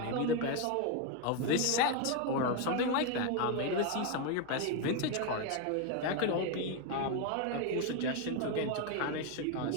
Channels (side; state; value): both; different; correlation 0.01